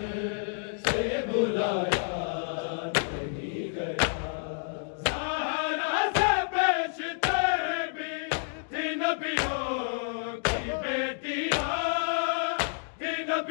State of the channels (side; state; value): right; silent; digital silence